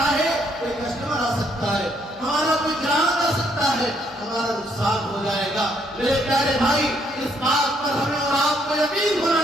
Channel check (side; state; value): both; normal; correlation 0.70